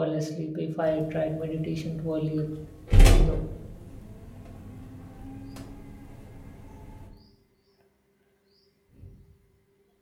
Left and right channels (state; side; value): identical; both; correlation 1.00